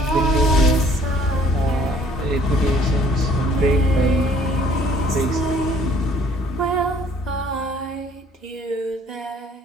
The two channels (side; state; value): both; normal; correlation 0.58